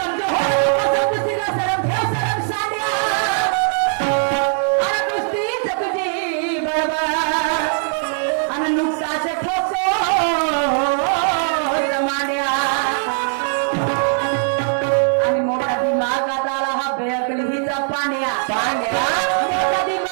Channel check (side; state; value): left; silent; digital silence